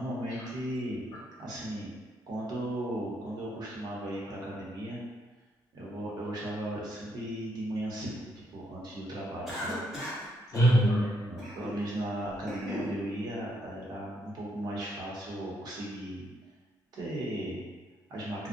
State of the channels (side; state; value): both; normal; correlation 0.75